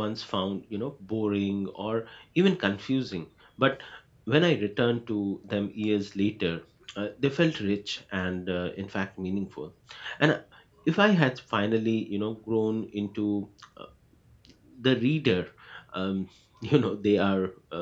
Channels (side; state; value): both; identical; correlation 1.00